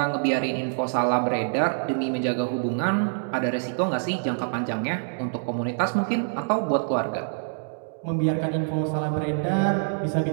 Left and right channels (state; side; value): silent; left; digital silence